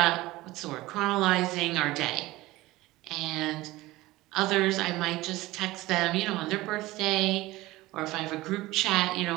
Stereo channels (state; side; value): quieter; left; 18.7 dB